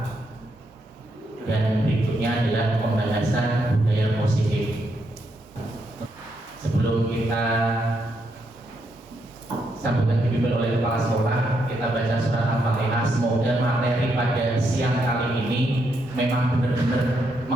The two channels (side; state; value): both; normal; correlation 0.79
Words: dan berikutnya adalah pembahasan budaya positif. Sebelum kita sambutan dipimpin oleh kepala sekolah, kita baca surat Al-Fatihah. Semoga materi pada siang kali ini memang benar-benar